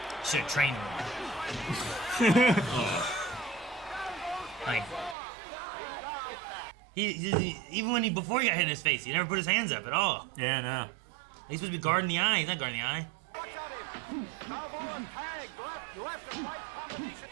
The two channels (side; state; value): left; drops out; at 5.2 s